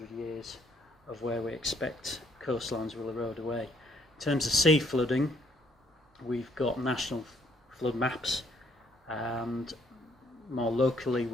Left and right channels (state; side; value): normal; both; correlation 0.67